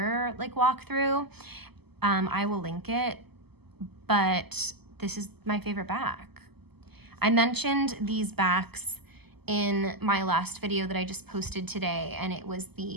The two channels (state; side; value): late; left; 0.97 ms